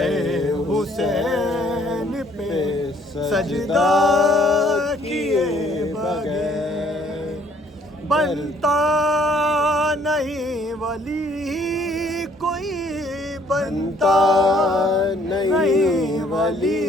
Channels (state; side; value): normal; both; correlation 0.62